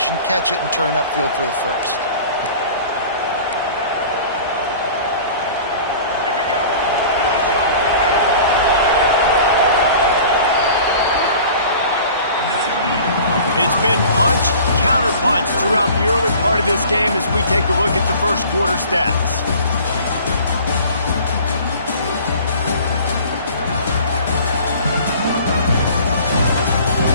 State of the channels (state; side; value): inverted; both; correlation -0.44